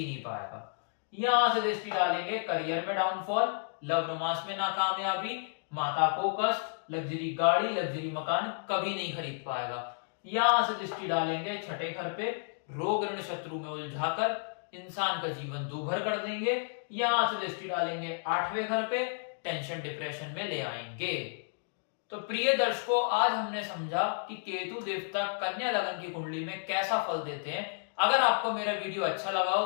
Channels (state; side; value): silent; right; digital silence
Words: नहीं पाएगा। यहां से दृष्टि डालेंगे करियर में डाउनफॉल, लव रोमांस में नाकामयाबी, माता को कष्ट, लग्जरी गाड़ी लग्जरी मकान कभी नहीं खरीद पाएगा। यहां से दृष्टि डालेंगे 6ठे घर पे, रोग ऋण शत्रु में उलझाकर इंसान का जीवन दूभर कर देंगे। यहां से दृष्टि डालेंगे 8वें घर पे, टेंशन डिप्रेशन में ले आएंगे। तो प्रिय दर्शकों, आज हमने समझा कि केतु देवता कन्या लगन की कुंडली में कैसा फल देते हैं। अगर आपको मेरा वीडियो अच्छा लगा हो